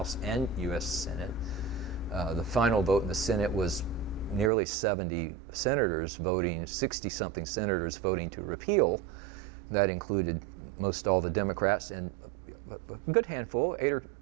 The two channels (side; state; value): left; drops out; at 4.5 s